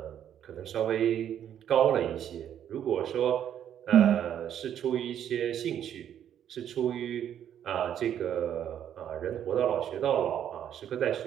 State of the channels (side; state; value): left; quieter; 9.8 dB